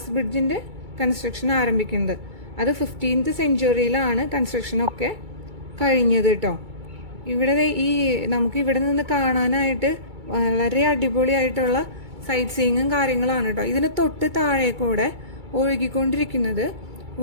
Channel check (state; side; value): late; left; 2.3 ms